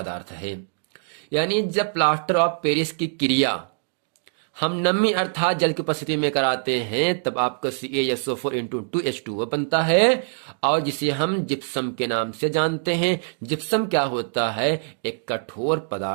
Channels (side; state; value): left; silent; digital silence